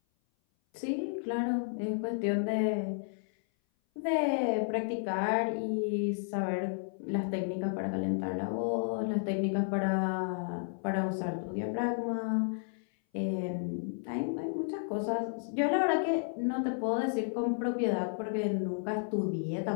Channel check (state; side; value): silent; right; 56 dB below the other